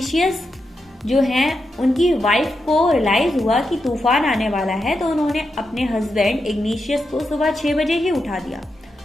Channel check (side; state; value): both; normal; correlation 0.86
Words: जो हैं उनकी वाइफ को रियलाइज हुआ कि तूफान आने वाला है, तो उन्होंने अपने हस्बैंड इग्निशियस को सुबह 6 बजे ही उठा दिया।